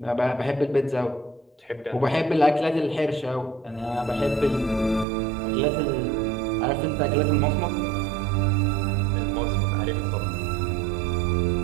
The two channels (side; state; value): left; drops out; at 5.1 s